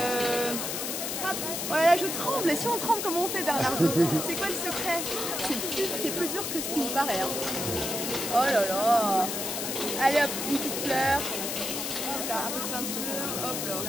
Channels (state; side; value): noise; left; hiss, 3 dB below the sound